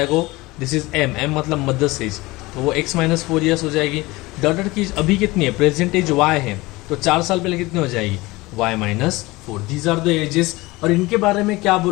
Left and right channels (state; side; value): quieter; right; 21.3 dB